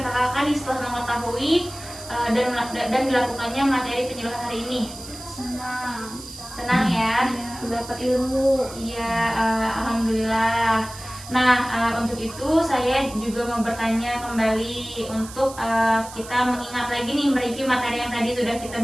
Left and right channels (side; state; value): right; noise; hiss, 15 dB below the sound